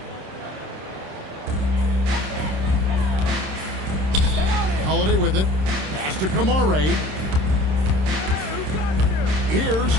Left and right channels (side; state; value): left; late; 26 ms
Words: Holiday with it. Pass to Kamare. Here's